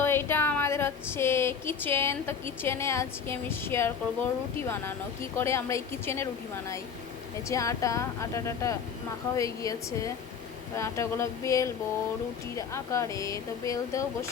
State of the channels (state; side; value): quieter; right; 6.6 dB